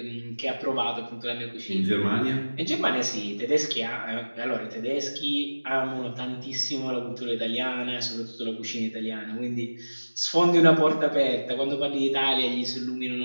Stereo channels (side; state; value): both; inverted; correlation -1.00